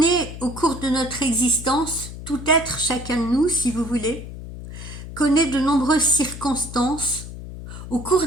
au cours de notre existence, tout être, chacun de nous, si vous voulez, connaît de nombreuses circonstances au cours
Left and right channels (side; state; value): left; noise; hum, 11 dB below the sound